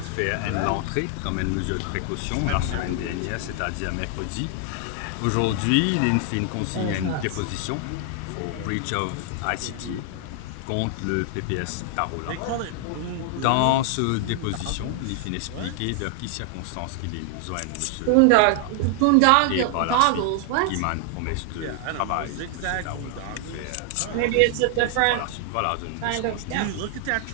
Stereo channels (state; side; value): different; both; correlation 0.00